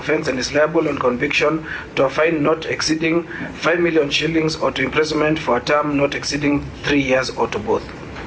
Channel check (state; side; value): identical; both; correlation 1.00